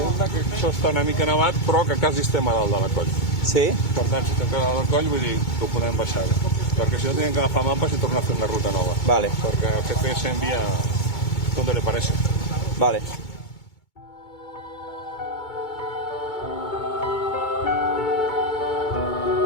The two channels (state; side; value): late; right; 2.3 ms